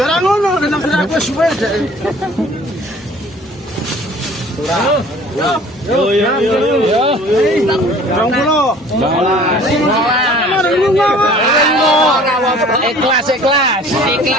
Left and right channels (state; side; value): normal; both; correlation 0.50